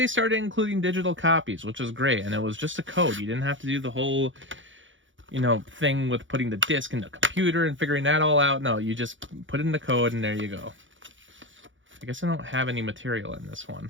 started including digital copies, which was great, and it was just a code. You didn't have to do the whole, you know, thing with putting the disc in the computer and figuring that all out. No, you just put in the code and there you go. I guess I don't have any material in this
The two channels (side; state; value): left; late; 0.56 ms